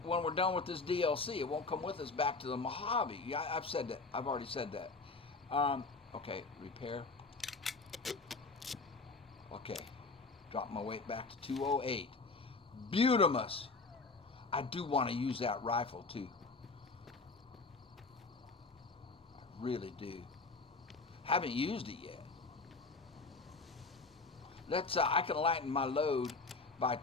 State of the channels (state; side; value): quieter; right; 3.9 dB